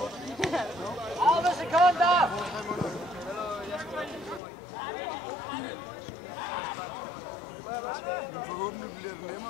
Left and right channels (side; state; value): right; drops out; at 4.4 s